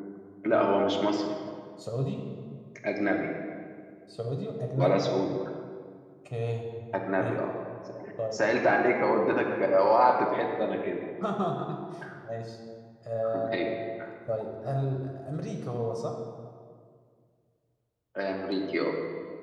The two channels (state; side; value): identical; both; correlation 1.00